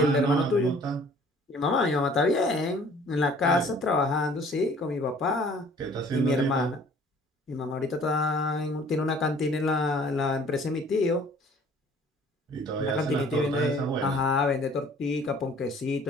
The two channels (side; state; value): both; normal; correlation 0.53